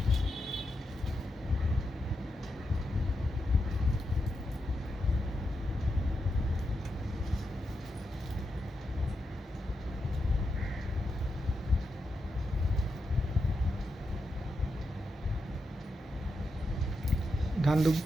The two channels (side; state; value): both; normal; correlation 0.87